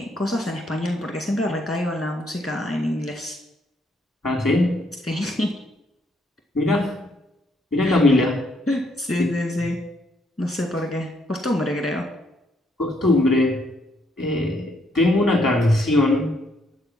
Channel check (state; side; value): normal; both; correlation 0.71